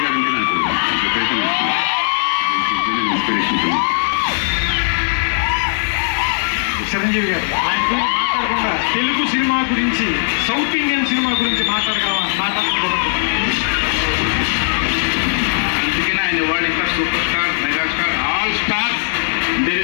గారు అంటే నాకు విపరీతంగా ఇష్టం, ఇన్స్పిరేషన్. చిరంజీవి గారు ఆయన గురించి మాట్లాడకుండా తెలుగు సినిమా గురించి, సౌత్ ఇండియన్ సినిమా గురించి మాట్లాడకూడదు. అందుకనే ఆయన వరల్డ్ ఇంకా super star, megastar, all stars. There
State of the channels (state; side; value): silent; right; digital silence